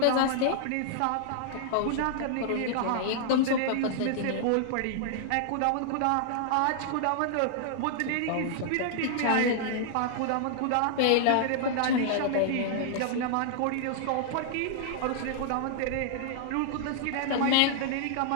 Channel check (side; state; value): both; different; correlation -0.01